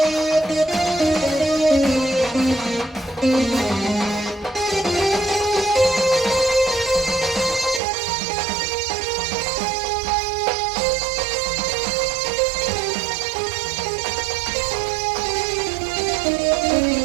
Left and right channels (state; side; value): drops out; left; at 7.8 s